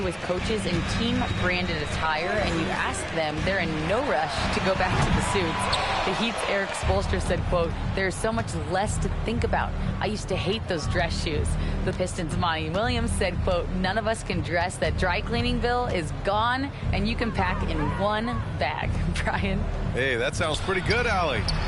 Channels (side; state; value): both; identical; correlation 1.00